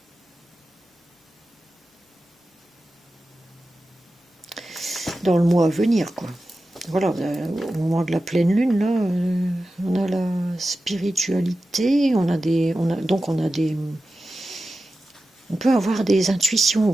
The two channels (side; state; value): both; normal; correlation 0.93